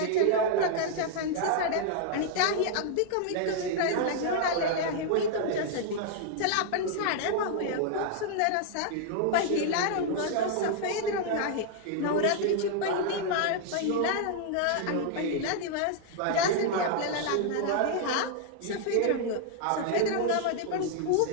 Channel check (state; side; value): different; both; correlation 0.00